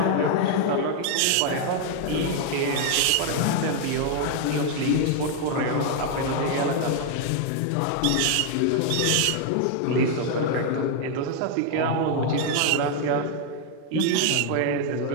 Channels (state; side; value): different; both; correlation 0.00